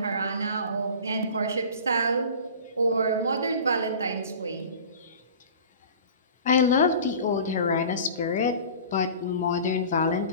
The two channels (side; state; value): both; inverted; correlation -0.40